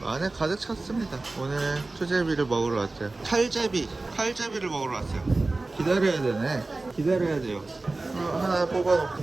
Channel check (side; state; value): left; quieter; 3.2 dB